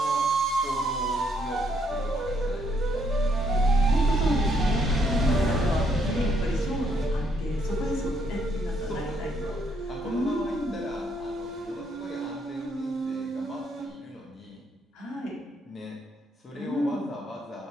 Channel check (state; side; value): normal; both; correlation 0.72